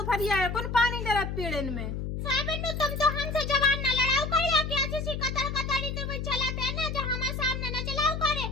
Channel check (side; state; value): left; noise; hum, 4 dB below the sound